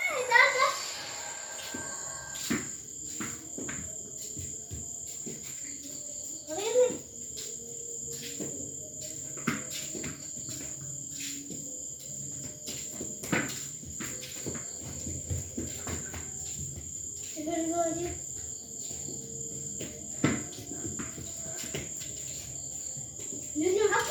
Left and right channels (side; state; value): both; identical; correlation 1.00